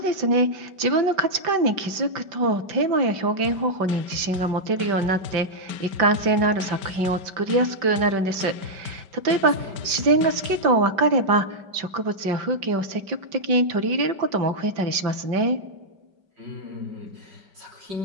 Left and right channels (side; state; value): left; late; 5.2 ms